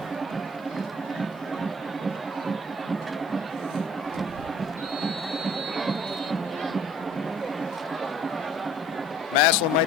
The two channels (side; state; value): both; normal; correlation 0.54